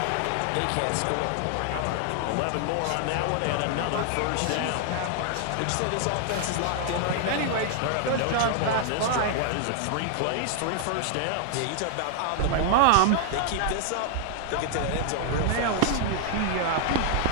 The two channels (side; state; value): both; different; correlation 0.00